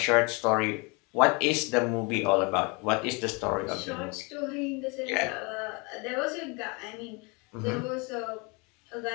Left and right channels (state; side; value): quieter; right; 29.8 dB